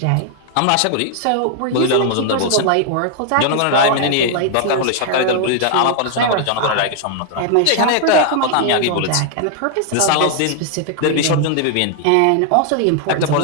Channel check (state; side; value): different; both; correlation 0.00